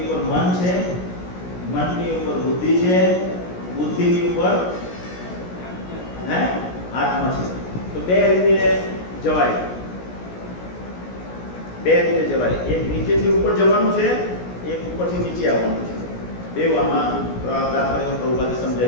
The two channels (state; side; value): late; right; 17 ms